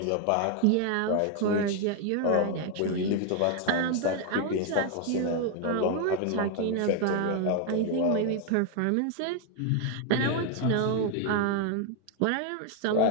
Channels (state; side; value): different; both; correlation 0.00